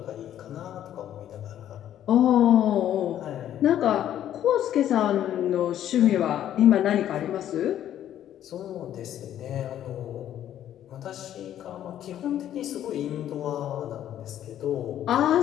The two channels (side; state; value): right; quieter; 11.2 dB